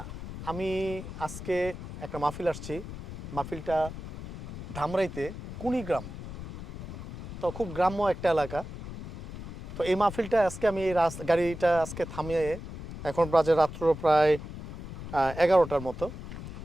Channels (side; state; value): left; noise; rumble, 10 dB below the sound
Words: আমি আজকে একটা মাহফিল আসছি। মাহফিলটা ধামরাইতে কুড়িগ্রাম। তো খুব গ্রাম্য একটা এলাকা। তো এই মাহফিলটা আজকে আমি এই গাড়িটা আজকে থামিয়ে, এখন বাজে রাত্র প্রায় 11টার মতো।